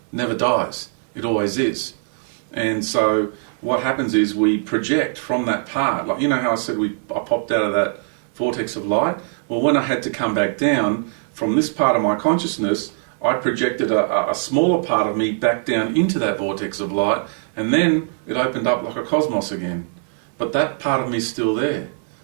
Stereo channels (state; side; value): silent; left; digital silence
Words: never dies. It always is. And so what happens is we project from that part. Like, you know how I said I popped out of that vortex of light? Well, when I had to come back down from this part of my consciousness, I projected a smaller part of me back down into that vortex of light, and then it opened up like a cosmos again. But that part of me is still there.